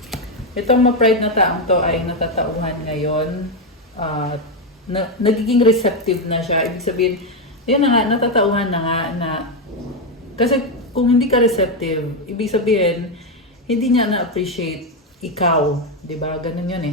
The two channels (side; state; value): both; normal; correlation 0.06